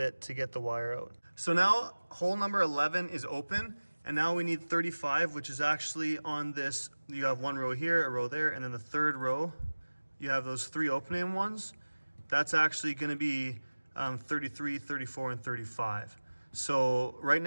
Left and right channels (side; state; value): both; inverted; correlation -1.00